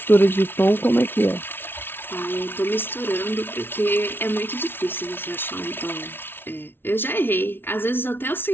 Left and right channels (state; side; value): late; right; 0.11 ms